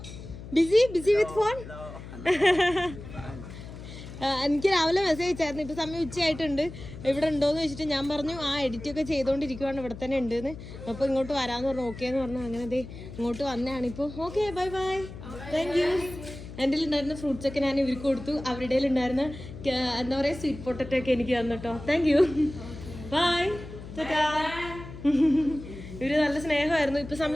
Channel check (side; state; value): left; noise; hum, 13 dB below the sound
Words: Busy with phone? എനിക്ക് രാവിലെ മെസ്സേജ് അയച്ചായിരുന്നു. ഇപ്പോൾ സമയം ഉച്ചയായിട്ടുണ്ട്, ഇവിടെ ഉണ്ടോയെന്ന് വെച്ചിട്ട് ഞാൻ പറഞ്ഞു ആ എഡിറ്റൊക്കെ ചെയ്തുകൊണ്ടിരിക്കുവാണ്, ഇവിടെ തന്നെ ഉണ്ടെന്ന്. അപ്പോൾ ഇങ്ങോട്ട് വരാമെന്ന് പറഞ്ഞു. ഓക്കെ എന്ന് പറഞ്ഞു. അങ്ങനെ ദേ ഇങ്ങോട്ട് വന്നതാണ് ഇപ്പോൾ. Okay, bye bye, thank you. എൻ്റെ ഉണ്ടായിരുന്ന ഫ്രൂട്ട്സൊക്കെ ഞാൻ ഇവർക്ക് കൊടുത്തു. അവരുടെ ഉണ്ടായിരുന്ന എന്താ പറയുക സ്വീറ്റ് പൊട്ടറ്റോ ഒക്കെ എനിക്ക് തന്നു കേട്ടോ. Thank you, bye, tata. ഇവർ നല്ല സ്നേഹമായിരുന്നു. ഇപ്പോൾ